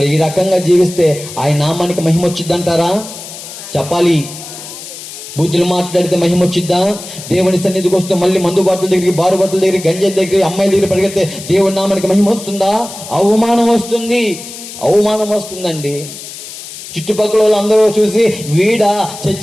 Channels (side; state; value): left; noise; hiss, 13 dB below the sound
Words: ఈ రకంగా జీవిస్తే ఆయన నామానికి మహిమ వచ్చిద్దంటారా? చెప్పాలి. బూతులు మాట్లాడితే మహిమ వచ్చిద్దా? దేవుని సన్నిధికి వస్తూ మళ్ళీ మందు బాటల దగ్గరికి, బారు బాటల దగ్గరికి, గంజాయి దగ్గరికి, అమ్మాయిల దగ్గర పరిగెడితే దేవుని నామానికి మహిమ వస్తుందా? అవమానం వస్తుంది, అవమానం వస్తుందండి. చుట్టుపక్కల వాళ్ళందరూ చూసి వీడా